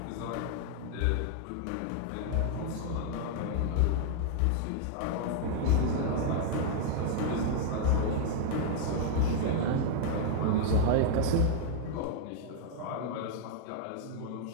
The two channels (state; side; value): different; both; correlation -0.01